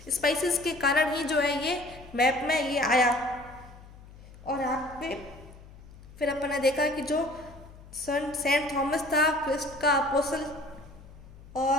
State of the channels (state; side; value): noise; left; hum, 19 dB below the sound